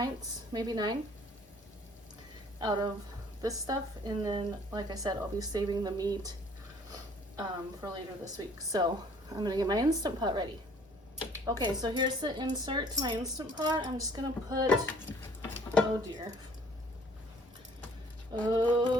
maybe 9 out of this stuff. And then, like I said, I'll be saving the meat for later this week. So I'm gonna get my Instant Pot ready. Okay, so here's the insert to my Instant Pot. I'm just gonna put, oh dear.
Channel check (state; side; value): normal; both; correlation 0.56